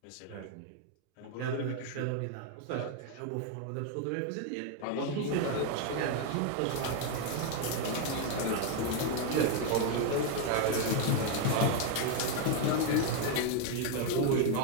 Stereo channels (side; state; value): both; different; correlation 0.01